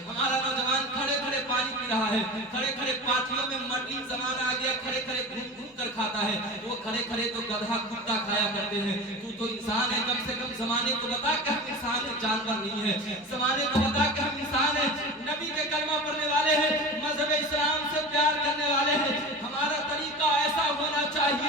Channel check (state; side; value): normal; both; correlation 0.31